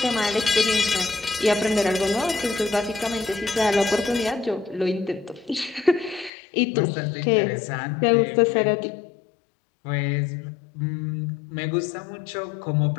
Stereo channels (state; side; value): drops out; right; at 6.3 s